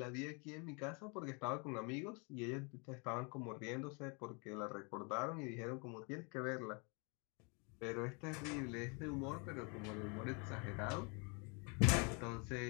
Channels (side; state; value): right; quieter; 33.2 dB